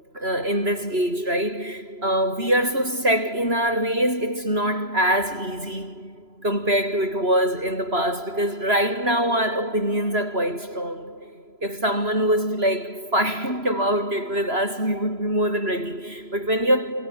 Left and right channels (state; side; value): late; left; 3.0 ms